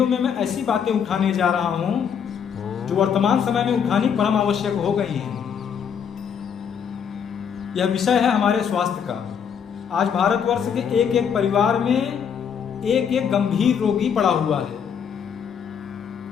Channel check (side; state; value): right; quieter; 7.5 dB